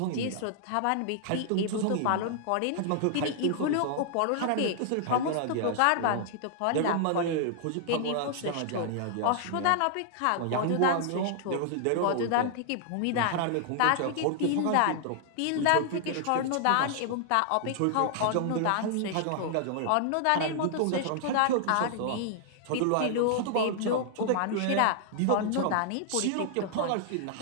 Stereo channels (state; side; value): different; both; correlation -0.01